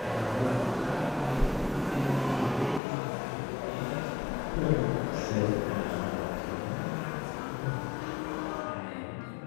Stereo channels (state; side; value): drops out; right; at 2.8 s